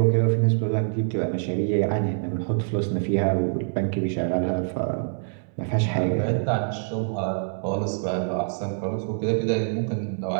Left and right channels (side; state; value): left; silent; 62 dB below the other